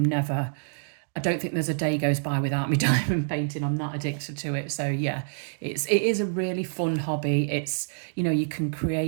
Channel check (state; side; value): silent; left; digital silence